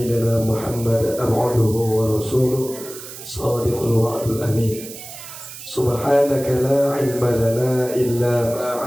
Muhammad abduhu wa rasuluh sadiqul wa'dul amin. Subhanaka la ilma lana illa ma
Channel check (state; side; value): noise; right; hiss, 13 dB below the sound